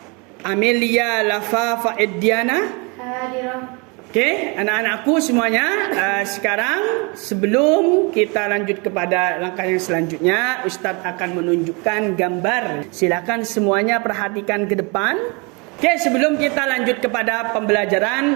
Amelia Lafa Ediana. Hadirah. Oke, anak-anakku semuanya, sekarang sebelum kita lanjut kepada langkah yang selanjutnya, Ustadz akan menunjukkan gambar. Silakan semuanya perhatikan ke depan. Oke, sebelum kita lanjut kepada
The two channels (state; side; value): quieter; left; 30.2 dB